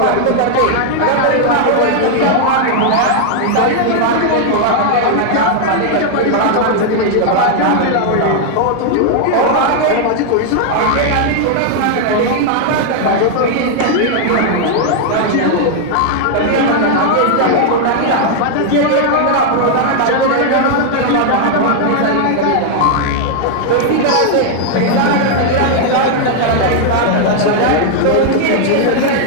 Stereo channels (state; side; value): different; both; correlation 0.00